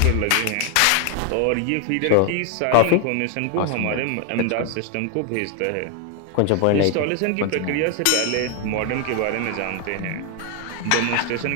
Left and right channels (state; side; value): different; both; correlation 0.01